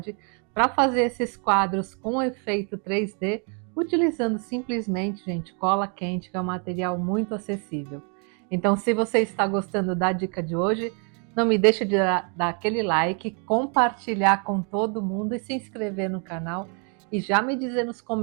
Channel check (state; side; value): quieter; left; 38.6 dB